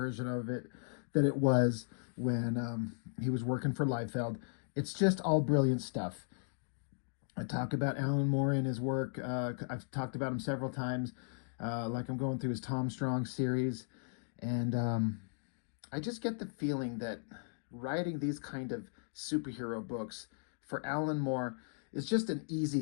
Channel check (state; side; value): silent; right; digital silence